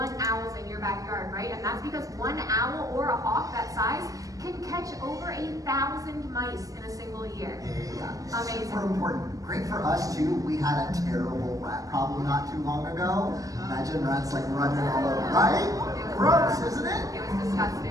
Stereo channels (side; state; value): left; late; 0.17 ms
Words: owls in your backyard, right? And that's because one owl or a hawk that size can catch over 1,000 mice in a single year. Yeah. Amazing. Super important. Great for us too. We had a terrible rat problem not too long ago. Imagine rats like running all over, right? Gross, isn't it? It was